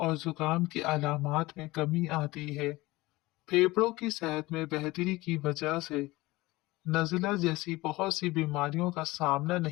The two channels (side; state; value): right; quieter; 20.2 dB